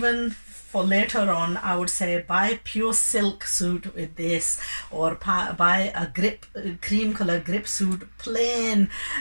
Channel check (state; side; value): inverted; both; correlation -1.00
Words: for later on, I would say buy pure silk suit with this, or buy a cream color grip suit, plain,